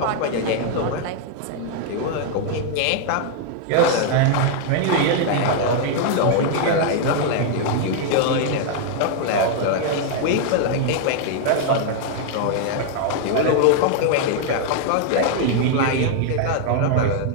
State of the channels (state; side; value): different; both; correlation 0.00